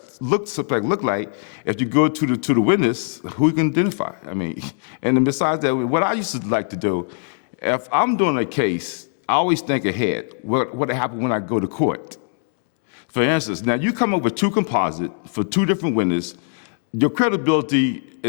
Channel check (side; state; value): right; silent; digital silence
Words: looked like, if you go to the witness, who you can identify? I mean, and then besides that, what I used to like to do, if I'm doing a case, I always think ahead. What happened when I go to court? For instance, now you come up with two composites for two different witnesses. Your credibility